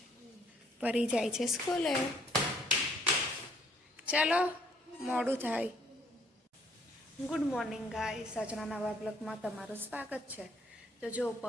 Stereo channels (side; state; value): both; normal; correlation 0.64